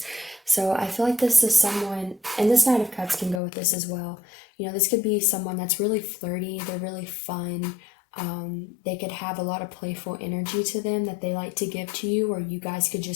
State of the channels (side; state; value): right; drops out; at 3.4 s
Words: So I feel like this is someone, and this Knight of Cups can go with this as well. You know, this could be someone that's really flirty, they're really fun. They could have a lot of playful energy to them that they like to give to you, or you guys could